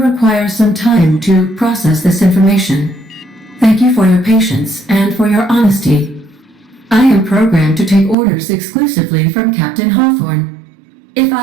some time to process this information. Thank you for your patience and for your honesty. I am programmed to take orders exclusively from Captain Hawthorne. If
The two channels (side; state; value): left; drops out; at 8.2 s